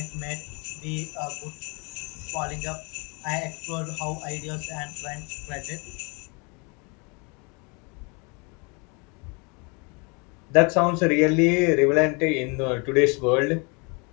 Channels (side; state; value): right; quieter; 31.1 dB